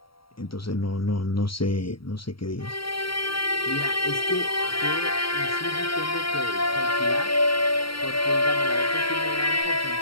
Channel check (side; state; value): right; late; 0.74 ms